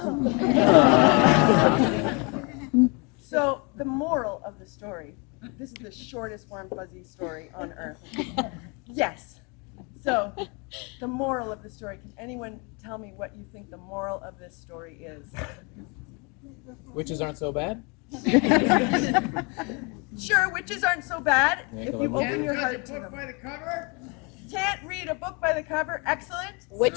So the moral of the story, this is the shortest warm fuzzy story on earth. Yes. So the moral of the story, can anyone tell me what you think the moral of this story is? Witches aren't so bad? Sure, witches aren't so bad if you Can't open your heart to them. Can't read a book by the cover. Excellent.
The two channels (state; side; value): quieter; right; 31.3 dB